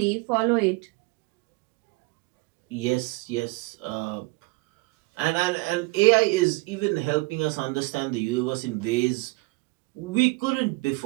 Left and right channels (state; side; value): quieter; left; 24.3 dB